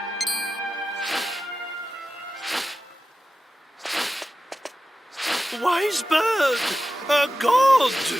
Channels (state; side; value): normal; both; correlation 0.93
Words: Wise bird, a god.